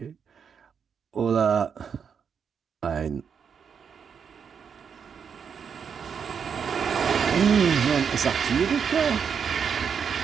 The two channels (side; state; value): left; quieter; 6.9 dB